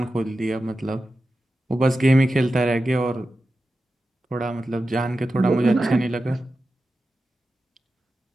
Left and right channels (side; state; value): both; normal; correlation 0.92